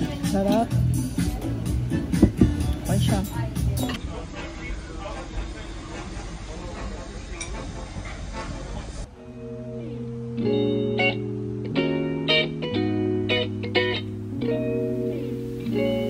Sarap. Ay siya.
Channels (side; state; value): both; identical; correlation 1.00